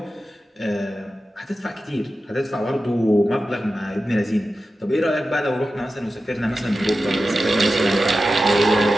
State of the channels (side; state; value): both; normal; correlation 0.93